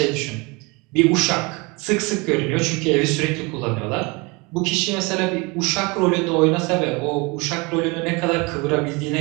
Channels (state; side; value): quieter; left; 27.1 dB